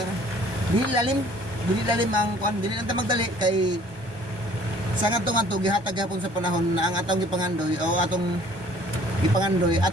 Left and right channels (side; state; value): left; late; 1.2 ms